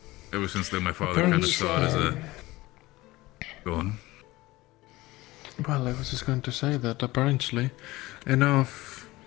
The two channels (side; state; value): right; quieter; 19.4 dB